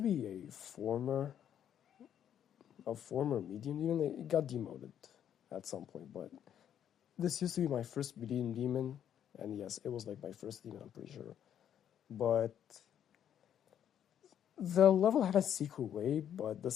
be a former medium demon. It got demoted at some point, but this used to be my first medium demon, and yes, it was like my first demon, I'm pretty sure. But the level had a secret way, but the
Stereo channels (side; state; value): right; quieter; 9.6 dB